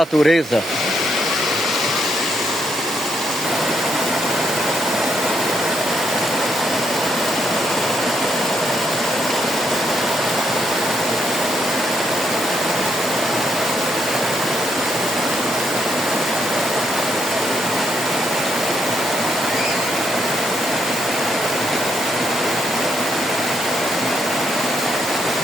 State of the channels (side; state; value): both; normal; correlation 0.76